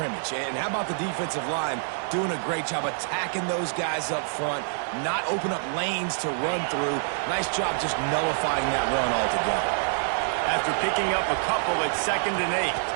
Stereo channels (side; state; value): left; silent; 61 dB below the other